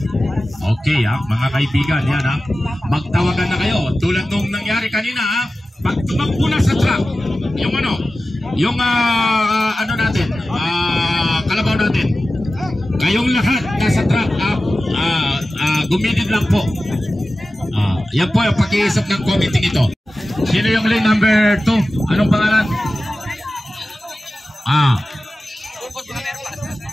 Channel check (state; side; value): normal; both; correlation 0.95